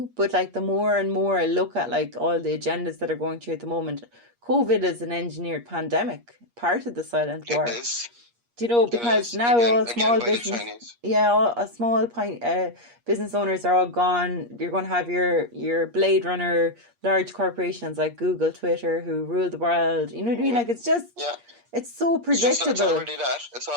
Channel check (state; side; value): late; left; 8.5 ms